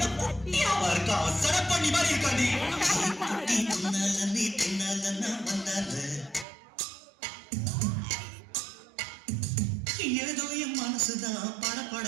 குட்டியாவா இருக்கா சட பண்ணி மாதிரி இருக்காடி குட்டி தின்னால நீ தின்னால நான் வந்தால ஏதோ என் மனசுதான்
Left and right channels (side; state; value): left; drops out; at 6.5 s